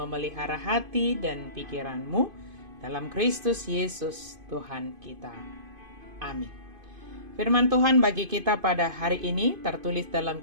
hati dan pikiranmu dalam Kristus Yesus Tuhan kita. Amin. Firman Tuhan bagi kita pada hari ini tertulis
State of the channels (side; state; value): left; late; 2.5 ms